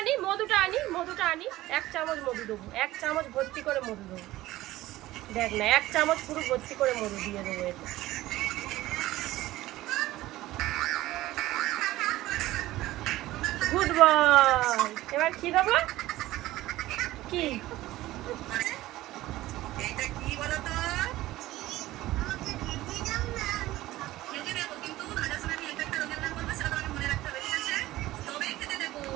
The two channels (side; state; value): left; quieter; 16.6 dB